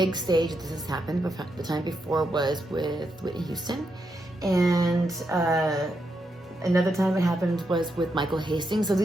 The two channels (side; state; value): both; normal; correlation 0.83